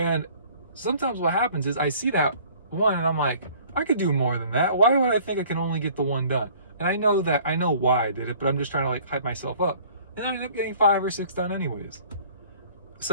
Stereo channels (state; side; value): inverted; both; correlation -0.52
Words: sometimes what happens is I see that one and I'm like, I could do more than that. Why would I think I can only get the one done? And I know why I did it, but I'm just trying to like hype myself up. And I ended up getting 5 or 6 done anyways.